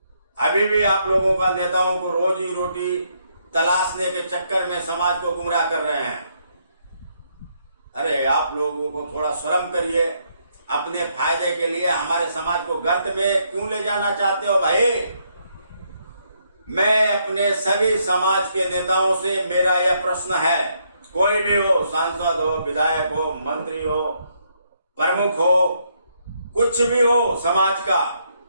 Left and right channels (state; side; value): inverted; both; correlation -0.74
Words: अभी भी आप लोगों का नेताओं को रोजी रोटी तलाशने के चक्कर में समाज को गुमराह कर रहे हैं। अरे आप लोगों को थोड़ा शर्म करिए। अपने फायदे के लिए हमारे समाज को गर्त में क्यों ले जाना चाहते हो भाई? मैं अपने सभी समाज के नेताओं से मेरा यह प्रश्न है, कोई भी हो, सांसद हो, विधायक हो, मंत्री हो, प्रमुख हो, कुछ भी हो समाज का,